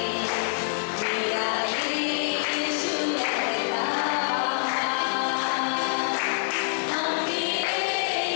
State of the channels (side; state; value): right; silent; digital silence